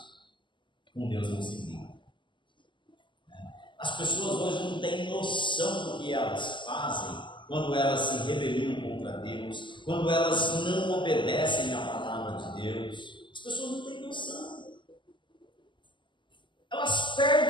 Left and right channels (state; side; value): late; right; 0.24 ms